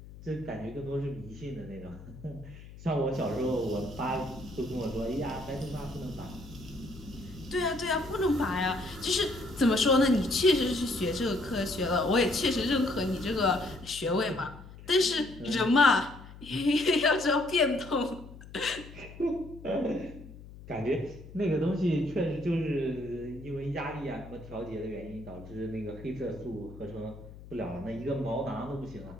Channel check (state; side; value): noise; left; hum, 17 dB below the sound